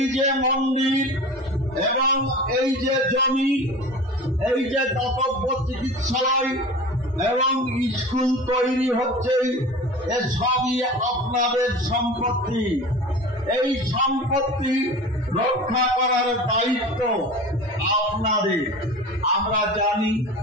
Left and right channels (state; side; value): normal; both; correlation 0.36